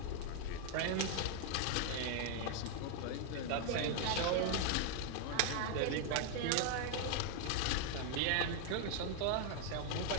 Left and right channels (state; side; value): different; both; correlation 0.00